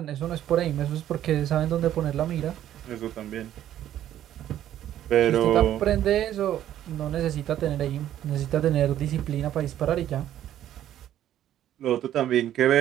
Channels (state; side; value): quieter; left; 11.7 dB